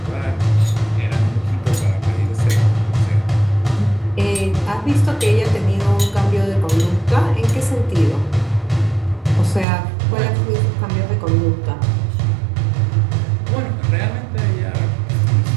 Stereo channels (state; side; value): drops out; left; at 9.7 s